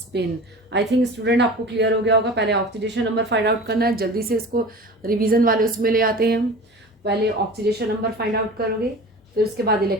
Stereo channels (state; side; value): normal; both; correlation 0.37